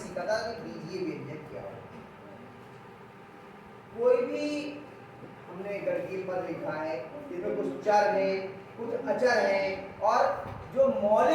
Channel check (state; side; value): identical; both; correlation 1.00